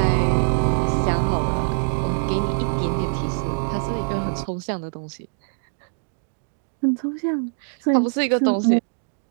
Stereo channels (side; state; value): left; silent; digital silence